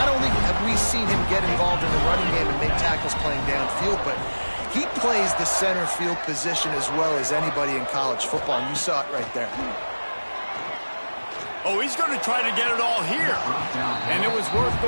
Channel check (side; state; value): both; inverted; correlation -1.00